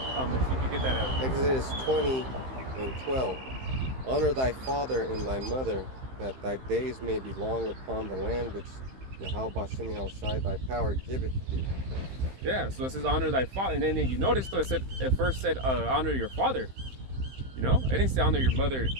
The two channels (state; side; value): late; left; 15 ms